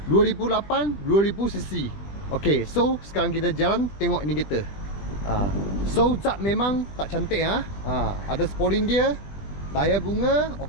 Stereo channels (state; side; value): late; right; 20 ms